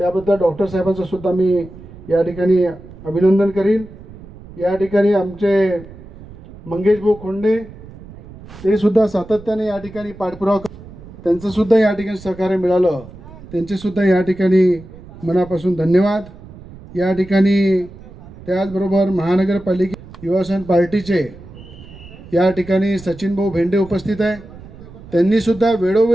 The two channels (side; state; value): right; noise; rumble, 18 dB below the sound